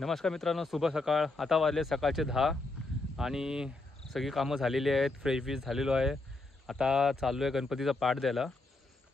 मित्रांनो, शुभ सकाळ. आता वाजले सकाळचे 10 आणि सगळी कामं झालेली आहेत. फ्रेश झालेलो आहे. आता चाललो आहे गणपतीचा पाठ द्यायला.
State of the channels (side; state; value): right; quieter; 3.1 dB